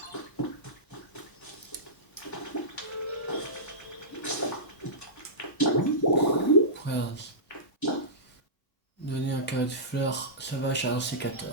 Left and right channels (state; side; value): normal; both; correlation -0.18